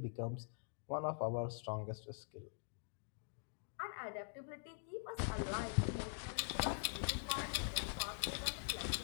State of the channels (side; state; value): right; silent; digital silence